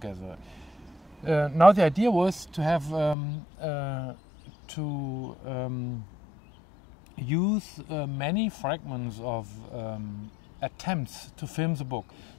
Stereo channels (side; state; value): right; drops out; at 3.2 s